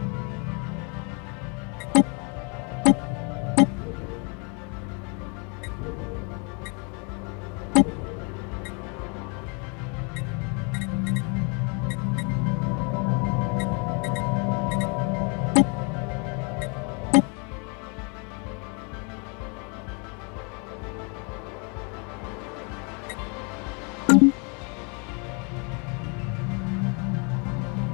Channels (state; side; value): quieter; right; 34.6 dB